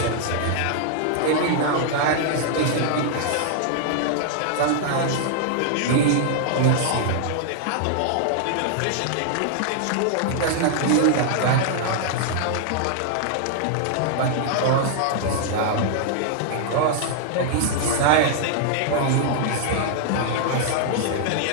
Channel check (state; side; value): different; both; correlation -0.01